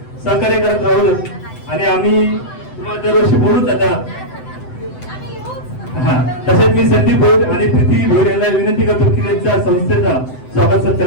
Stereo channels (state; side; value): late; right; 7.9 ms